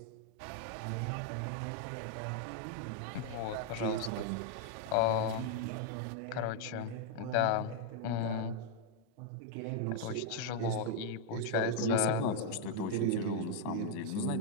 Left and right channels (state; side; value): different; both; correlation 0.00